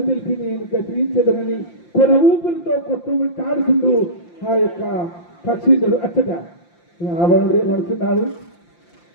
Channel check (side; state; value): right; late; 5.8 ms